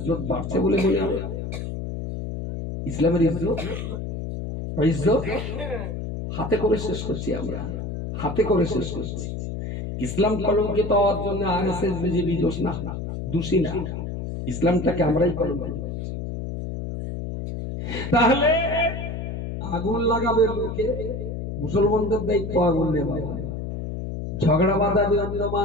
বাড়ছে বলে মনে হয়? ইসলামের ইজ্জত হাতে করে শেষ করছি আমরা, হাতে করে শেষ করছি। ইসলাম কলঙ্কিত হওয়ার জন্য আরএসএস বিজেপি দোষ না, দোষী না, ইসলামটাকে আমরাই কলঙ্কিত করছি। তাহলে আগুন লাগাবে লোকে, মুসলমানদের দায়িত্ব আগুন নেওয়া, ঝগড়া বাঁধাবে অন্য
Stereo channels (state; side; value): noise; left; hum, 5 dB below the sound